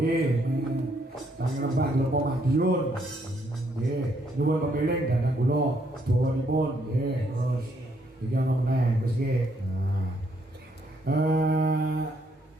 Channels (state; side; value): normal; both; correlation 0.71